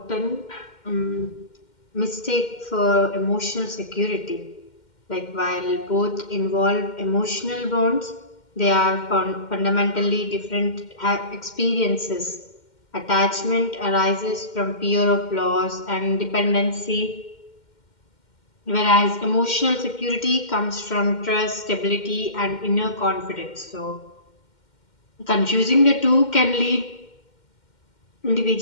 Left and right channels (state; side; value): late; right; 2.1 ms